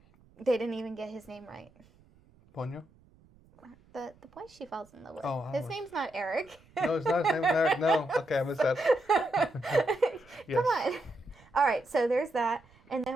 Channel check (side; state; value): right; noise; rumble, 29 dB below the sound